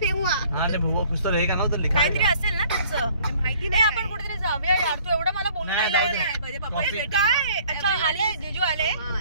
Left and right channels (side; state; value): both; inverted; correlation -0.56